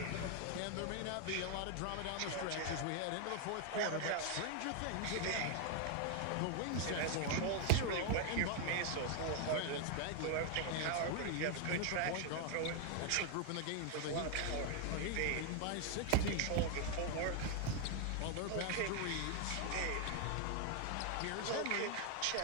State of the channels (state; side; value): different; both; correlation 0.01